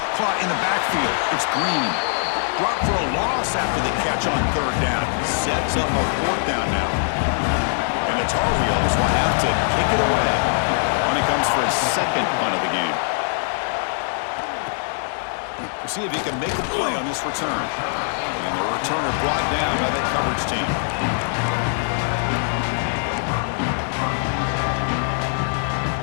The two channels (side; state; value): right; silent; 64 dB below the other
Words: Caught in the backfield. It's Green. Dropped for a loss after the catch on 3rd down. Sets up a 4th down now. And the Tar Heels will have to kick it away when he comes for his 2nd punt of the game. We'll see if he can make a play on this return. And the returner brought down by that coverage team.